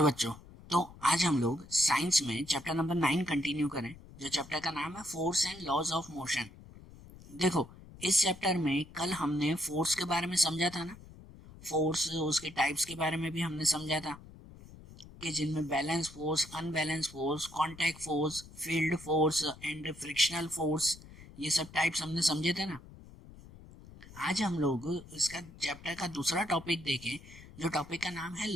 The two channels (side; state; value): left; noise; rumble, 19 dB below the sound